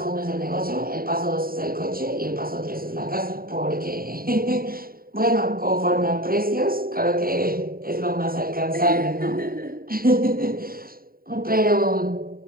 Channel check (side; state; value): left; late; 0.43 ms